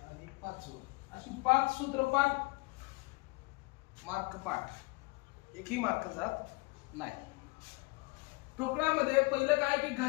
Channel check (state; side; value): quieter; right; 25.8 dB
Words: आणि पाचवं, अशी 5 सूत्रपाठ मार्क पाठ, एकही मार्क जात नाही. ठोकळामध्ये पहिलं काय की